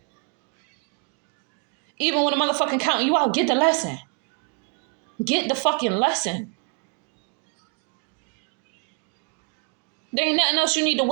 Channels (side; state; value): left; quieter; 36.6 dB